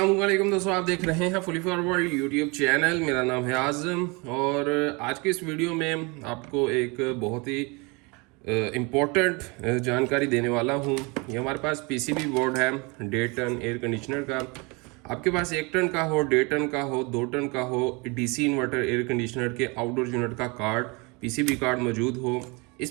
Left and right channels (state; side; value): quieter; left; 28.3 dB